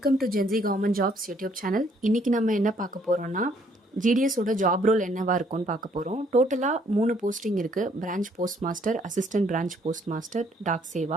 to Jency government jobs YouTube channel. இன்றைக்கி நம்ம என்ன பார்க்க போகிறோம்னா, ஜிடிஎஸோட ஜாப் ரோல் என்னவா இருக்கும்னு பார்க்க போகிறோம். டோட்டலாக 3 போஸ்டிங் இருக்குது. Branch post master, assistant branch post master, Dak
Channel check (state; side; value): normal; both; correlation 0.65